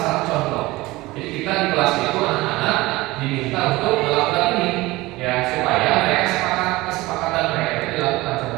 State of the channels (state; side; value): quieter; left; 20.0 dB